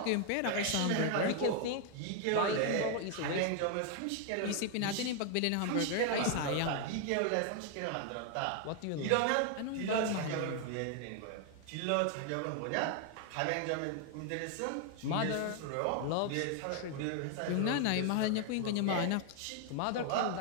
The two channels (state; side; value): different; both; correlation 0.00